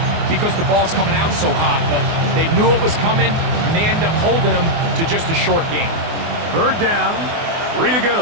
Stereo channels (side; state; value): left; late; 24 ms